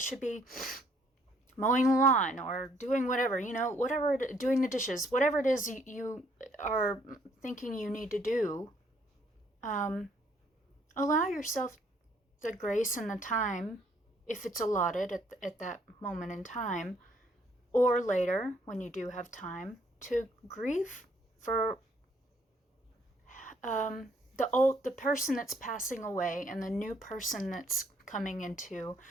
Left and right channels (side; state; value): both; normal; correlation 0.66